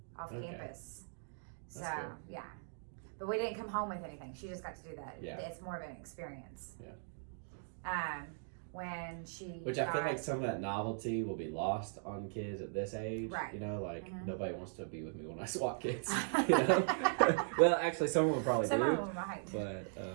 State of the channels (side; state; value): left; silent; digital silence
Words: off Okay. campus. So That's cool. yeah, but we didn't come home with anything. She just got to do that. Yeah. It's more of an experience. Yeah. When she Which I feel got- like some of that novelty will be lost on kids at this age. Right. You know, like Mhm. nobody wants to be with me when I swat kids. You know? Well, actually, some of them probably some do. of them might.